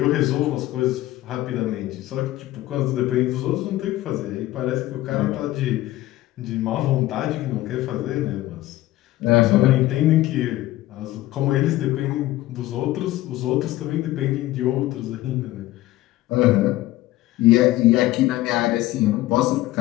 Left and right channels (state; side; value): quieter; right; 16.2 dB